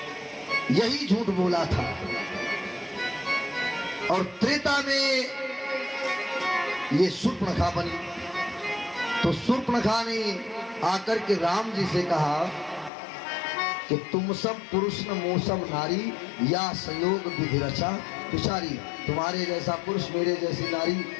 यही झूठ बोला था। और त्रेता में ये शूर्पणखा बनी। तो शूर्पणखा ने आकर के राम जी से कहा कि तुम सब पुरुष न मोसम नारी, या संयोग विधि रचा विचारी। तुम्हारे जैसा पुरुष मेरे जैसी नारी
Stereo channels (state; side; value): drops out; right; at 12.9 s